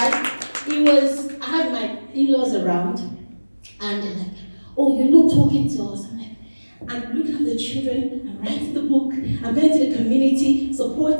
I had my in-laws around, and they're like, oh, you're not talking to us. I'm looking at the children, I'm writing the book, I'm going to the community,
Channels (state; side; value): inverted; both; correlation -1.00